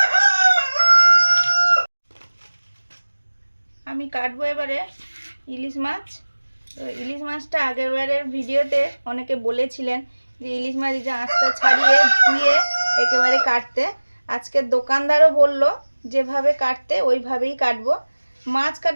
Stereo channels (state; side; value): inverted; both; correlation -1.00